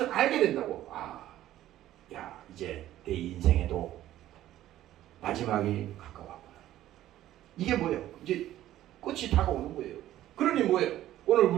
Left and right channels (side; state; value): left; quieter; 13.5 dB